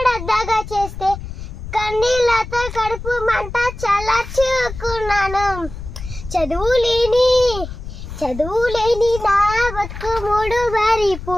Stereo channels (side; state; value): left; noise; rumble, 10 dB below the sound